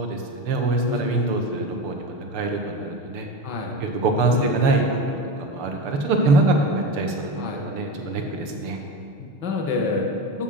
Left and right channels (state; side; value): late; left; 6.9 ms